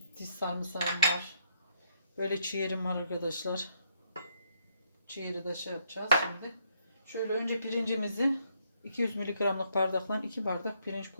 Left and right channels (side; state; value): both; inverted; correlation -0.73